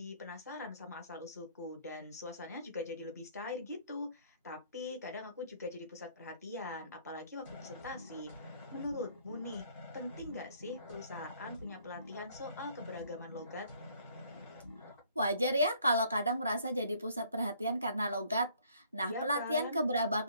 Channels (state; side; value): inverted; both; correlation -0.62